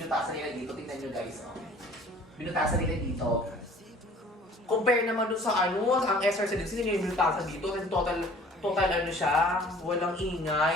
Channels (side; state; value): both; normal; correlation 0.51